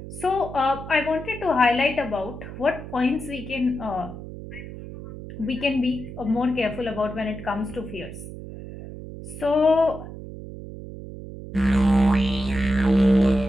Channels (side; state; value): right; noise; hum, 12 dB below the sound